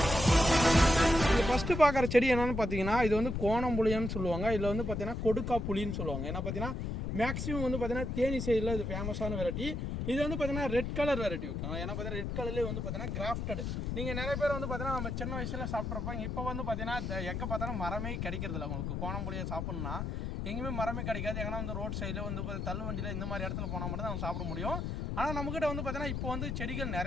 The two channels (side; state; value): left; noise; rumble, 3 dB below the sound